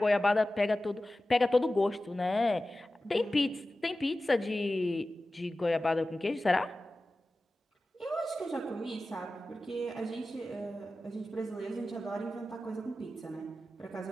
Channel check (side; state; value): both; normal; correlation 0.95